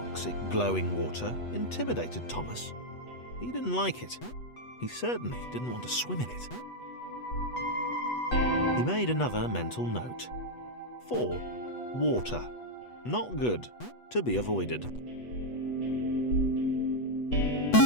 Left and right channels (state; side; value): late; right; 8.2 ms